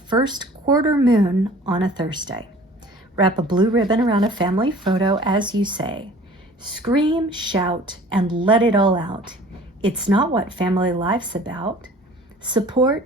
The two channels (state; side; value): normal; both; correlation 0.48